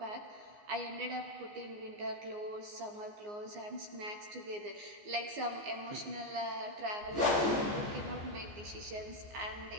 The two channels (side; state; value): left; late; 14 ms